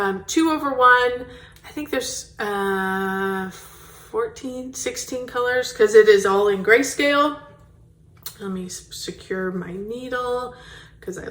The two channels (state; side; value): identical; both; correlation 1.00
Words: I think there's 16 colors because it is all in grayscale. Let me secure my needle because I